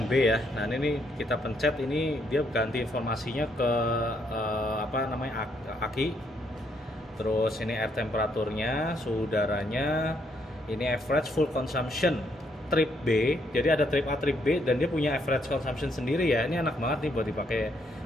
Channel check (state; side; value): normal; both; correlation 0.73